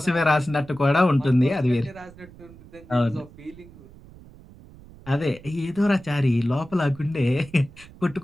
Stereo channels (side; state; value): right; noise; rumble, 21 dB below the sound